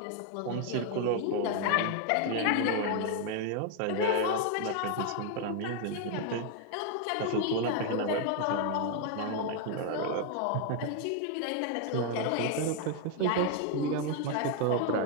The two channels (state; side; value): different; both; correlation 0.00